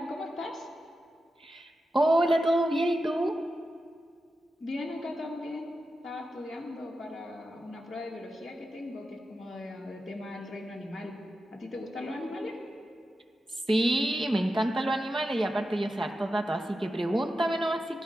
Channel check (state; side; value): normal; both; correlation 0.90